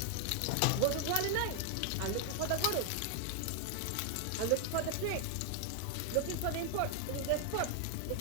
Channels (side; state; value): both; different; correlation 0.00